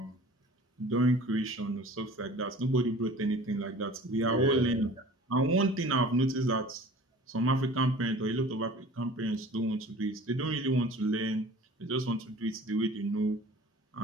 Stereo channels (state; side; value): normal; both; correlation 0.44